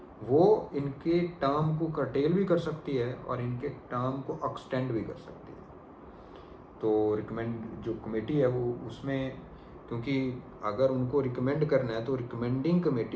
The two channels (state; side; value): identical; both; correlation 1.00